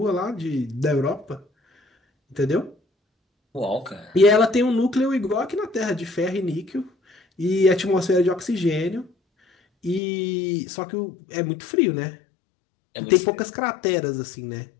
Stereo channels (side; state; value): right; drops out; at 10.0 s